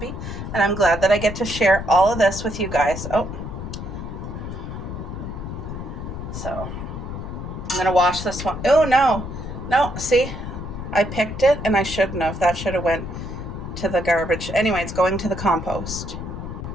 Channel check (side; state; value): left; noise; rumble, 7 dB below the sound